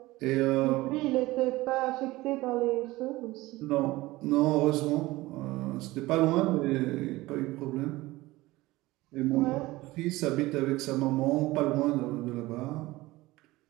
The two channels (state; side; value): quieter; left; 19.3 dB